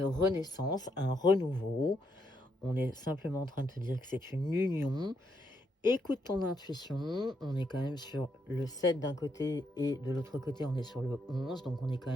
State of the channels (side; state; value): both; normal; correlation 0.78